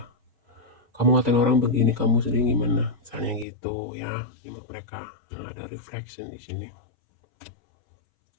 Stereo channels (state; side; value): drops out; right; at 3.5 s